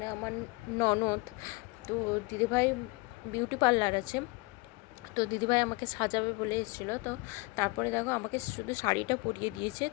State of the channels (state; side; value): quieter; right; 25.9 dB